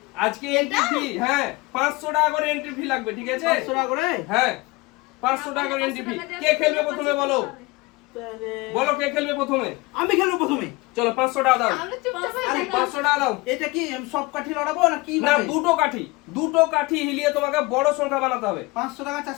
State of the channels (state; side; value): quieter; right; 23.3 dB